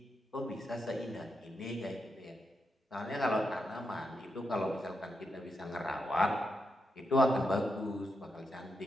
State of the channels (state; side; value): normal; both; correlation 0.85